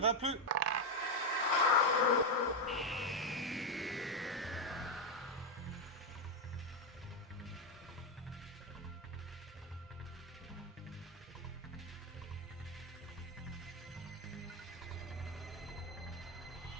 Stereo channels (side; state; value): both; normal; correlation 0.05